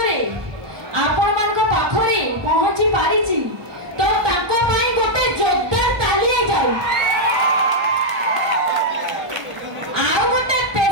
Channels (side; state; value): left; late; 1.0 ms